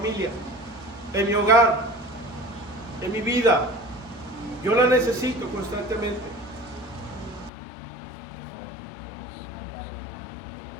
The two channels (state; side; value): drops out; right; at 7.5 s